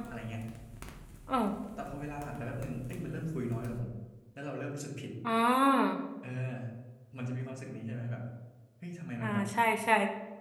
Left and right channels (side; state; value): both; identical; correlation 1.00